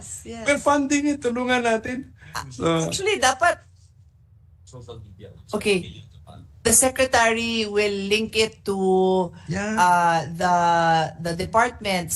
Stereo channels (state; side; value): identical; both; correlation 1.00